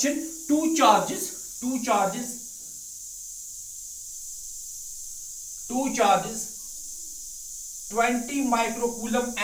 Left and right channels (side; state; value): both; identical; correlation 1.00